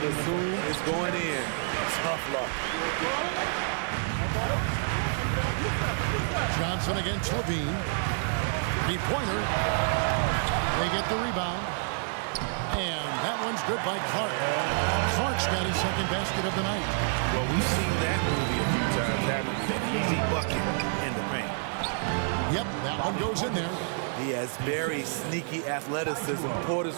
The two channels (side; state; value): left; silent; 58 dB below the other